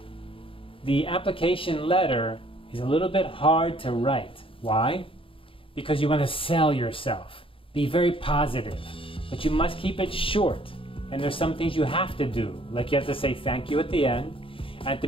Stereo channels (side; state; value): right; late; 0.26 ms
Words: the application letter is a little bit hard to write. Why? Because you want to sell yourself. Be very positive, but you must keep it short. And there's some things you have to do, like you have to say thank you at the end. At the